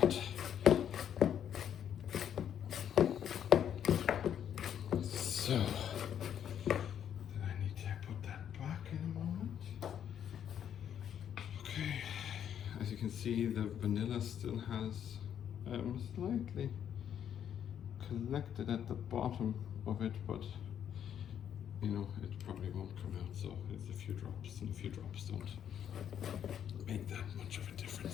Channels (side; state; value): right; quieter; 9.3 dB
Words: So, then I need to put that back in a moment. Okay, as you can see, the vanilla still has slightly collected at the bottom of it, but you know, it probably won't come out, so it's a few drops, and a few drops don't make that much of a